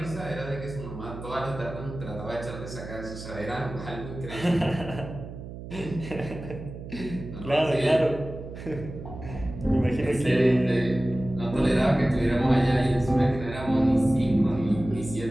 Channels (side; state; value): right; noise; hum, 11 dB below the sound